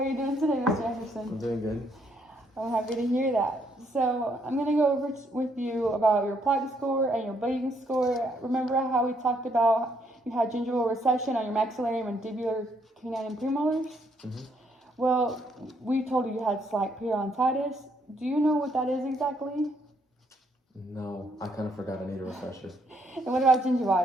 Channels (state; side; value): normal; both; correlation 0.71